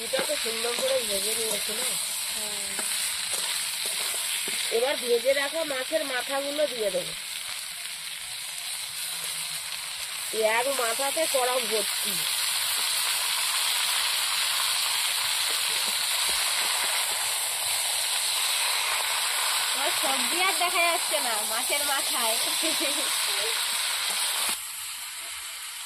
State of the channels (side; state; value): both; identical; correlation 1.00